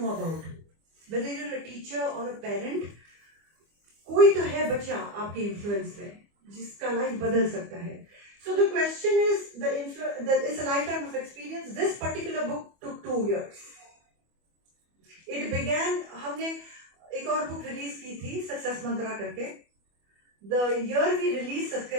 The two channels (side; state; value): left; late; 25 ms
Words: about. Whether you're a teacher or a parent, कोई तो है बच्चा आपके influence में जिसका life बदल सकता है. So the question is, it's a lifetime of experience. This particular book took 2 years. It began, हमने एक और book release की थी, Success Mantra करके. The year we released